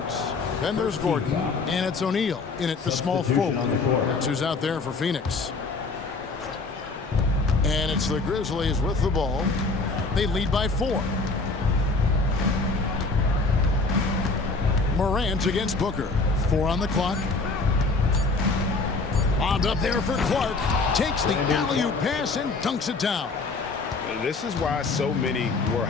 Then there's Gordon, and it's O'Neal in at the small forward. That's who's out there for Phoenix. And it's the Grizzlies with the ball. They lead by 4. Morant against Booker. 4 on the clock. Bombed up there for Clark. Takes the alley-oop pass and dunks it down. This is why so many were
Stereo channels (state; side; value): quieter; right; 3.8 dB